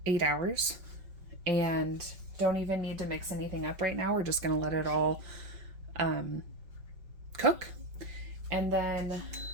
8 hours. And don't even need to mix anything up right now. We're just going to let it all cook. And then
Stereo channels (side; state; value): left; late; 5.3 ms